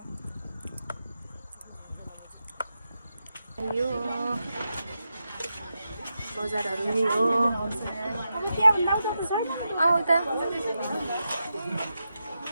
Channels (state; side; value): inverted; both; correlation -0.88